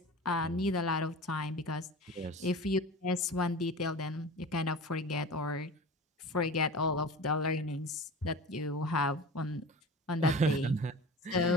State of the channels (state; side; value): normal; both; correlation 0.35